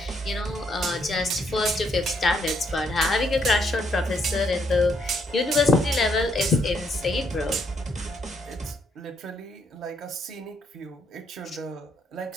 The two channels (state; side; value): normal; both; correlation 0.73